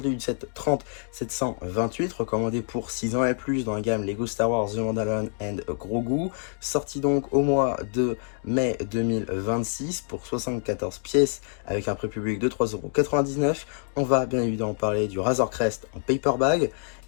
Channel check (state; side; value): silent; right; 57 dB below the other